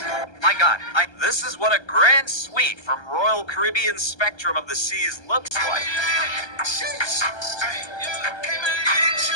My God, this is what a grand suite from Royal Caribbean Spectrum of the Seas looks like.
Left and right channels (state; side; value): late; right; 1.3 ms